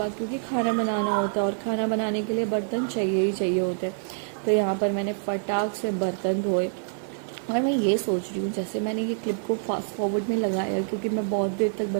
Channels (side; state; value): left; silent; digital silence